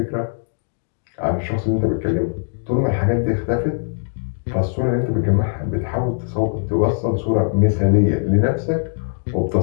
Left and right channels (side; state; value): right; silent; digital silence